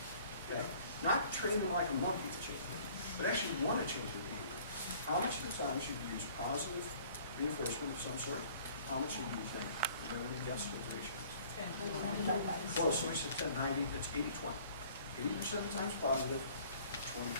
okay? Not train them like a monkey to change it, but actually want to change their behavior. How much of the time should you use positive reinforcement of some sort? How much should you use negative? Everyone guess those ratios? Close, so we said 10-90, it's 80-20. 80% of the time is positive,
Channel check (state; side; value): inverted; both; correlation -0.53